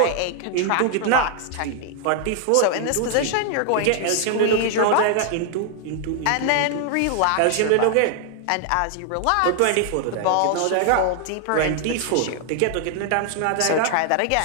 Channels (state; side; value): different; both; correlation 0.00